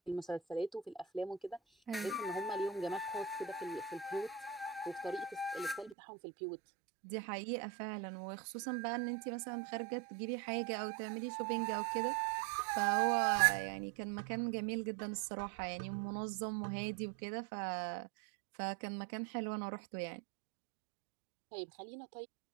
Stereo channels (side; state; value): left; drops out; at 6.0 s